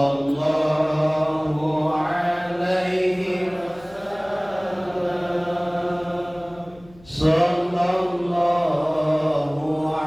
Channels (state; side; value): noise; left; hum, 25 dB below the sound